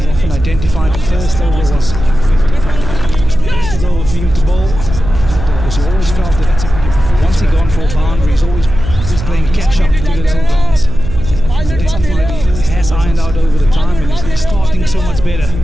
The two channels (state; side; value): noise; right; hum, 7 dB below the sound